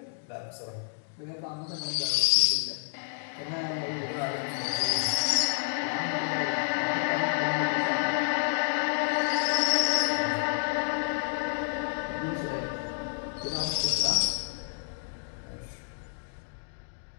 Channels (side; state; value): right; silent; digital silence